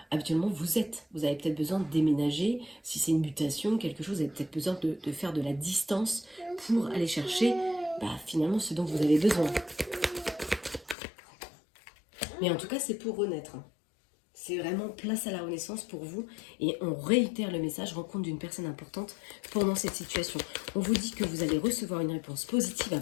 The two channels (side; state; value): right; drops out; at 11.0 s